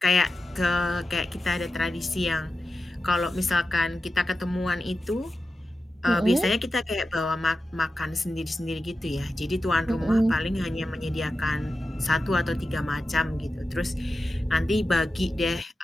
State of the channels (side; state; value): both; normal; correlation 0.92